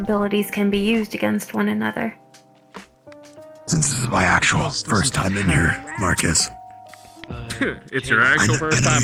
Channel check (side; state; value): both; identical; correlation 1.00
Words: can be used against one another. Since this is my actual first time in here, Marcus. It's your actual first